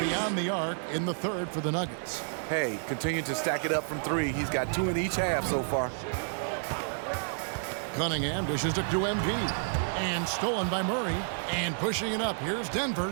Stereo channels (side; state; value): left; silent; digital silence